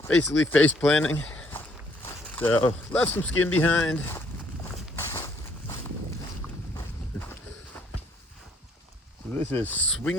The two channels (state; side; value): normal; both; correlation 0.66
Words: basically face planting. So left some skin behind. So this is